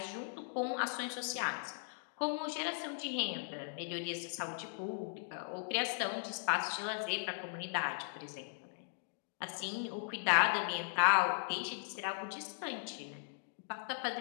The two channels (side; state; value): right; silent; digital silence